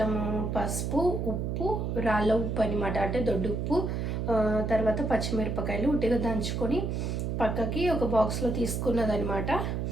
పసుపు, ఉప్పు, రాళ్ళ ఉప్పు అనమాట, అంటే దొడ్డు ఉప్పు, తర్వాత పచ్చిమిరపకాయలు ఉట్టిగా దంచుకొని పక్కకి ఒక బాక్స్లో తీసుకున్నదనమాట.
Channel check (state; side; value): noise; right; hum, 1 dB below the sound